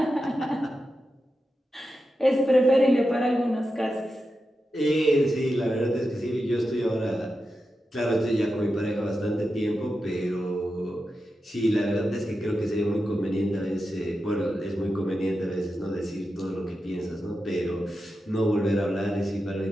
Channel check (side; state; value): both; normal; correlation 0.90